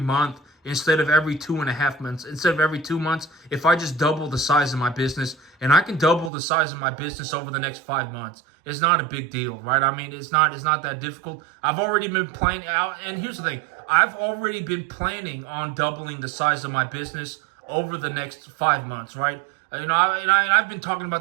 instead of every 2.5 months. Instead of every 2 months, if I just double the size of my business, and I can double the size of my business over the next 5 months, it's not a big deal, right? I mean, it's not that difficult. I've already been planning out, and here's the thing: I've already been planning on doubling the size of my business over the next 5 months, right? I've been talking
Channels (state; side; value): drops out; left; at 6.3 s